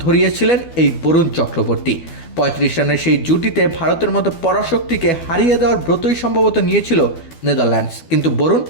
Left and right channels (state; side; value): late; right; 12 ms